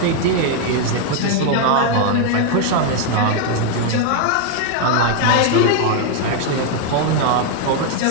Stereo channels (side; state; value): both; different; correlation 0.00